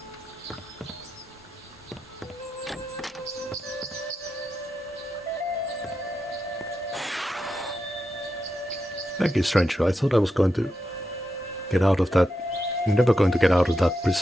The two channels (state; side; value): normal; both; correlation 0.87